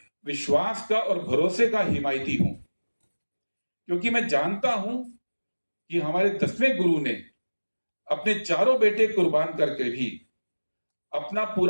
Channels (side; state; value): both; inverted; correlation -1.00